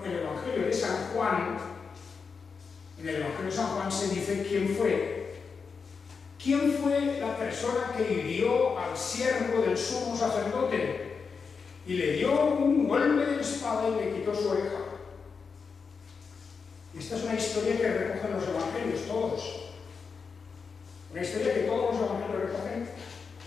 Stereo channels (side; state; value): right; quieter; 5.4 dB